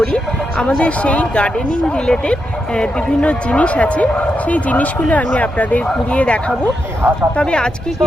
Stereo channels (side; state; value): both; normal; correlation 0.85